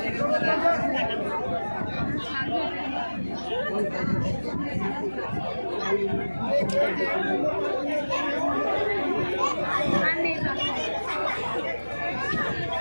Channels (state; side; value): inverted; both; correlation -1.00